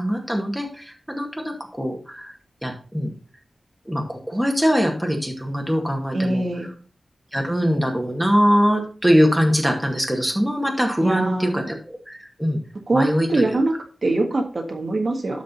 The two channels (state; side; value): normal; both; correlation 0.97